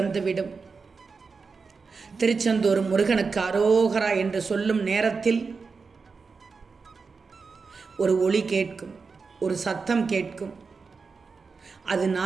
திருச்செந்தூர் முருகனுக்கு அரோகரா என்று சொல்லும் நேரத்தில் ஒரு ஒலி கேட்கும், ஒரு சத்தம் கேட்கும். அது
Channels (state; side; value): quieter; left; 4.8 dB